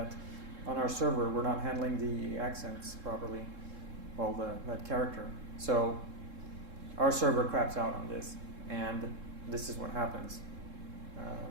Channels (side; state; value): left; late; 3.7 ms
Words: on our server we're not handling the accents properly, well, that character. So our server craps out on this, and this is what happens.